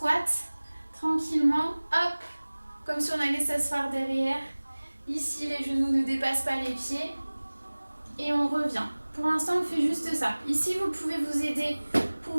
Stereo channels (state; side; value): inverted; both; correlation -1.00